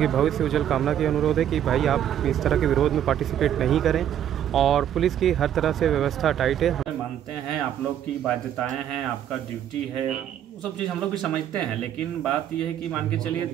भविष्य उज्जवल कामना की अनुरोध है कि भाई आप इस तरह के विरोध में पार्टिसिपेट नहीं करें और पुलिस की हर तरह से व्यवस्था टाइट है। मानते हैं आप लोग की बाध्यताएं हैं, आपका ड्यूटी है, वो सब चीज़ हम लोग भी समझते हैं, लेकिन बात यह है कि मान के चलिए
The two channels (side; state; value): left; quieter; 10.4 dB